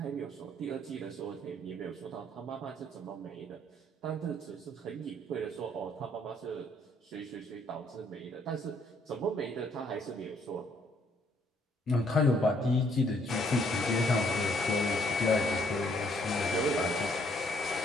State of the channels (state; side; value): normal; both; correlation 0.67